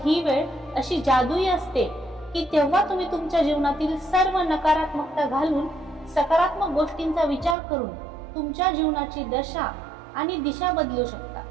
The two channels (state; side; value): drops out; left; at 7.6 s